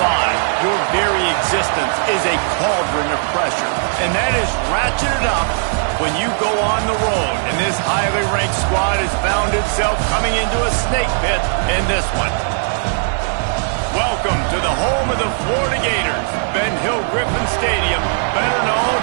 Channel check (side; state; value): left; silent; digital silence